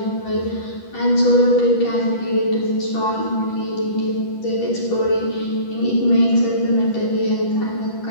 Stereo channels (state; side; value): late; right; 10 ms